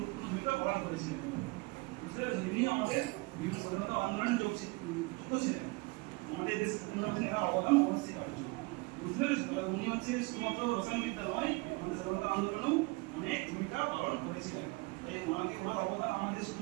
ভূমিকা পালন করেছিলেন। বুঝতে পেরেছেন? ইনি আমাদের বিভিন্ন স্বাধীনতা আন্দোলনে যুক্ত ছিলেন, আমাদের দেশ উন্নয়নে অবদান অবশ্যই। বুঝতে পেরেছেন? তবে উনি হচ্ছে শুধুমাত্র রসায়ন বিদ্যা নয়, আমাদের স্বাধীনতা আন্দোলনেও অনেক ভূমিকা পালন করেছিলেন। তাই ওনাকে, ওনার অবদান আমাদের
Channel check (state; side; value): quieter; left; 25.6 dB